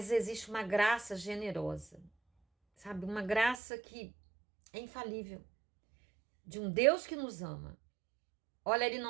existe uma graça generosa, sabe? Uma graça que é infalível. De um Deus que nos ama. Olha, ele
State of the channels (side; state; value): left; drops out; at 3.6 s